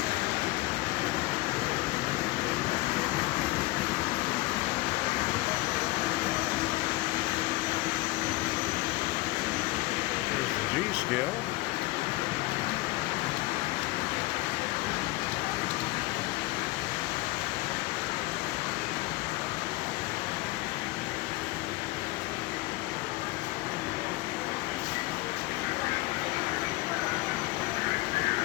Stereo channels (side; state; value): right; quieter; 20.8 dB